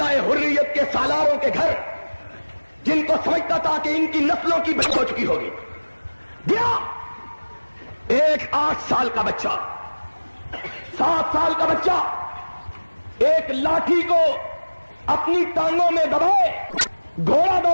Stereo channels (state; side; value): inverted; both; correlation -1.00